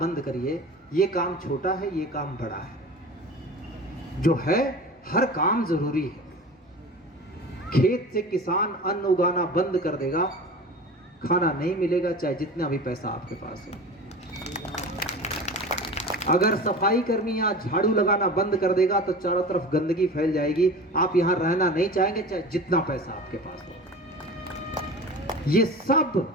करिए ये काम छोटा है, ये काम बड़ा है। जो है हर काम जरूरी है। खेत से किसान अन्न उगाना बंद कर देगा, खाना नहीं मिलेगा, चाहे जितना भी पैसा आपके पास हो। अगर सफाई कर्मी यहाँ झाड़ू लगाना बंद कर देगा तो चारों तरफ गंदगी फैल जाएगी, आप यहाँ रहना नहीं चाहेंगे, चाहे जितना पैसा आपके पास हो। ये सब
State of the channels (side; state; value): both; normal; correlation 0.35